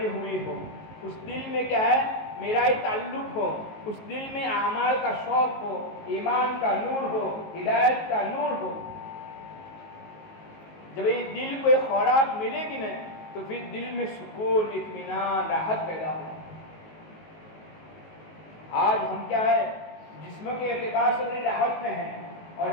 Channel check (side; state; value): right; late; 19 ms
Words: ہوئی ہو, اس دل میں کیا ہے میرا ہی تعلق ہو, اس دل میں اعمال کا شوق ہو, ایمان کا نور ہو, ہدایت کا نور ہو. جب یہ دل کو ایک خوراک ملے گی نا تو پھر دل میں سکون, اطمینان, راحت پیدا ہوگا. آج ہم کیا ہے جسم کے اعتبار سے بڑی راحت میں ہیں اور